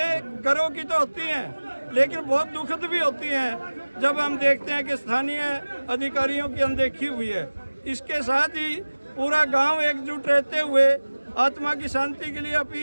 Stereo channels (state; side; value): inverted; both; correlation -1.00